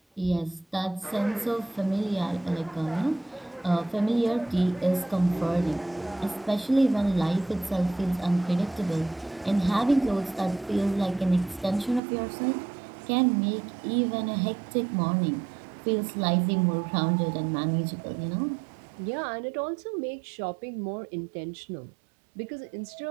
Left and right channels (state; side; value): drops out; left; at 12.0 s